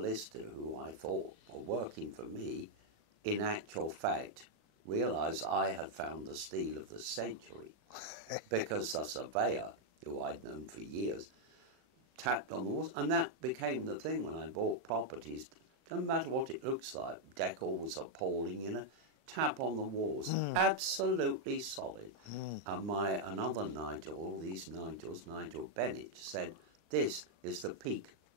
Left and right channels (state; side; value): late; left; 37 ms